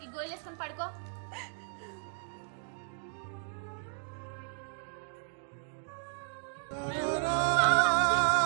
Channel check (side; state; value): left; silent; digital silence